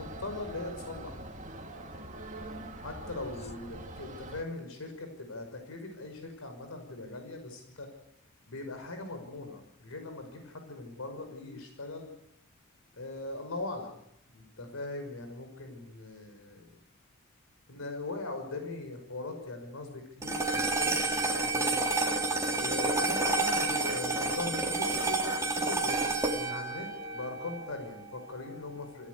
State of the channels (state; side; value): normal; both; correlation 0.05